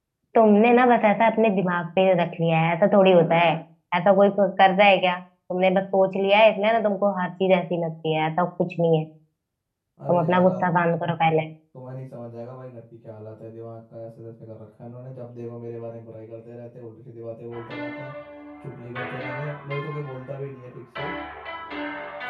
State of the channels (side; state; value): both; identical; correlation 1.00